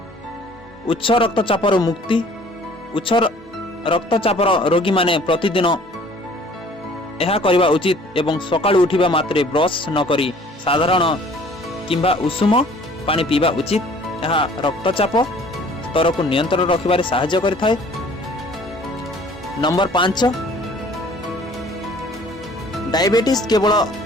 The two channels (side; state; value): both; normal; correlation 0.53